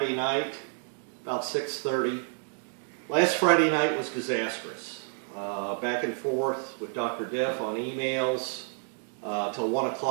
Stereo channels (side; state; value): left; silent; 58 dB below the other